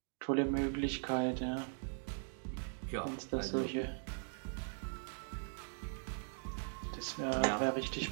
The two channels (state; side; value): silent; left; digital silence